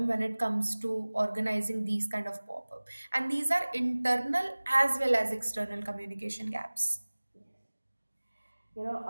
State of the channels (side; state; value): both; inverted; correlation -1.00